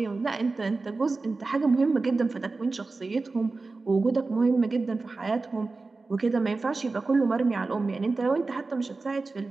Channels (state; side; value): quieter; left; 3.7 dB